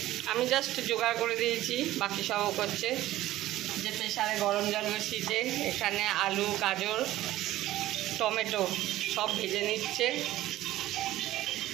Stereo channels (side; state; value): left; quieter; 15.2 dB